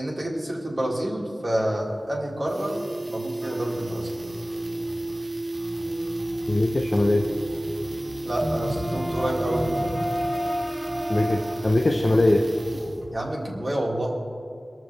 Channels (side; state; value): both; normal; correlation 0.97